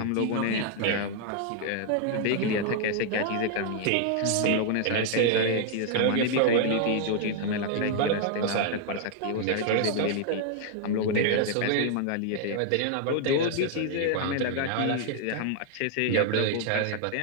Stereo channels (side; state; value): both; different; correlation 0.00